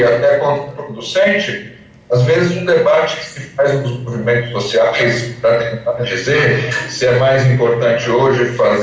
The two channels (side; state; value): both; identical; correlation 1.00